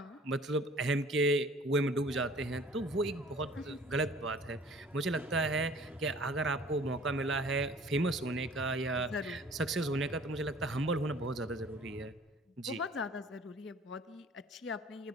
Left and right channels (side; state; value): both; normal; correlation 0.50